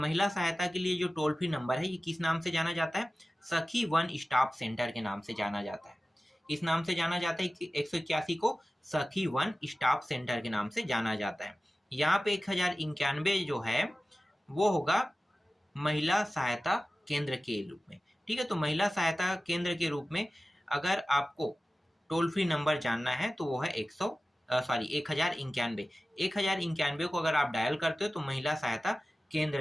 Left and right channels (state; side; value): normal; both; correlation 0.96